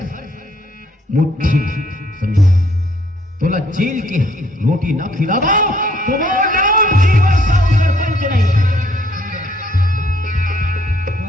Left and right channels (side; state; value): both; normal; correlation 0.64